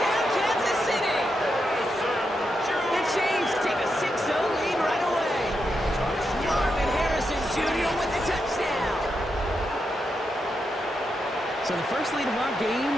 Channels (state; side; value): normal; both; correlation 0.84